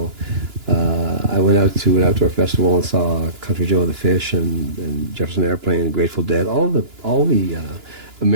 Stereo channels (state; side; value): late; left; 2.9 ms